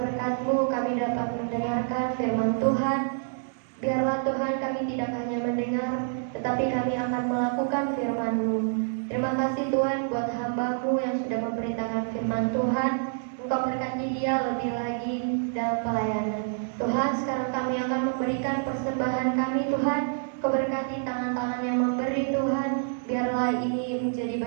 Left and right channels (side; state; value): left; silent; 60 dB below the other